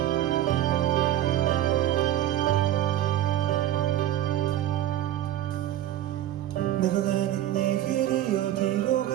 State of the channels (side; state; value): left; quieter; 12.7 dB